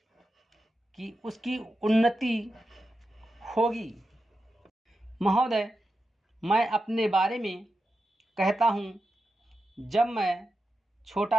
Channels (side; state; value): both; normal; correlation 0.89